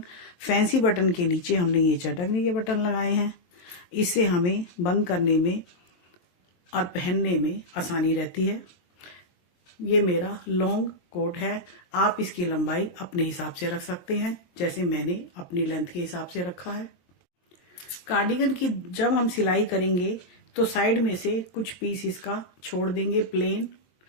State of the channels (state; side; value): late; right; 23 ms